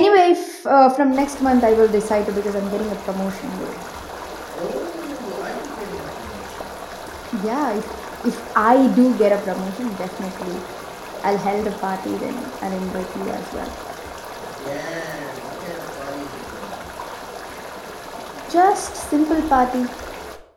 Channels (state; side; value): identical; both; correlation 1.00